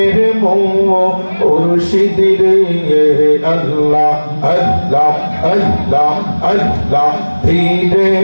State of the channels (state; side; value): inverted; both; correlation -1.00